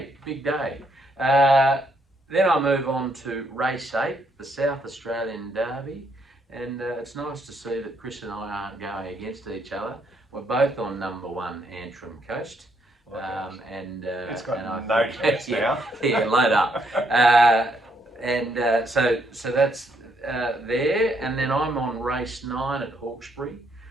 big day. Then I move on to race 8, the South Australian Derby, and it's nice to see that Chris and I aren't going against each other. We're both on number 1, Antrim Coast. It's got no chance now. Yeah, load up. So that's there, and then I'm on race 9 at Hawkesbury.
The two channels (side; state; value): both; normal; correlation 0.73